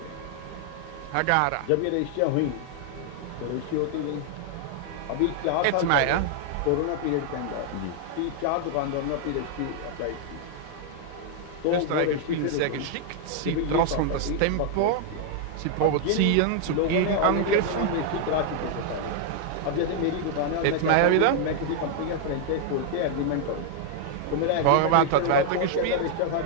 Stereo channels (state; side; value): different; both; correlation 0.00